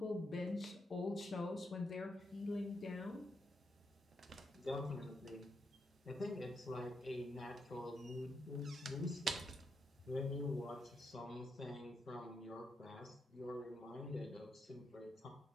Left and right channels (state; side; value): normal; both; correlation 0.82